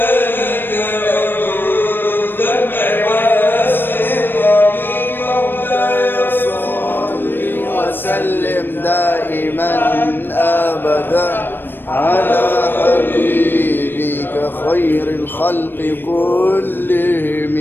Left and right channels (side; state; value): right; late; 0.096 ms